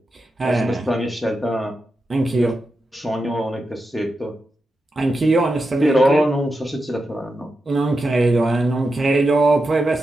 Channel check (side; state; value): both; normal; correlation 0.88